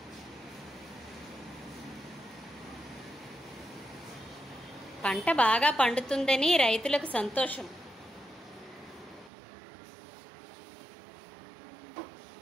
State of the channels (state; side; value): drops out; left; at 9.3 s